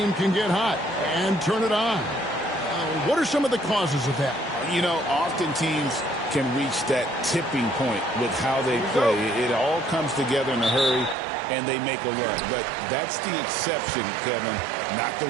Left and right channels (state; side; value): drops out; left; at 11.2 s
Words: can get hot and turn it on. What are some of the causes of that? You know, often teams can reach that tipping point with how they play. It all comes together in a hurry, and they make a run. But that's the exception, Kevin, not the